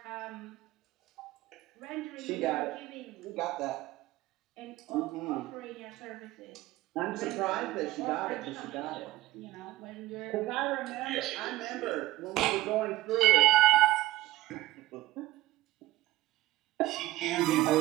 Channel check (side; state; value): left; quieter; 16.7 dB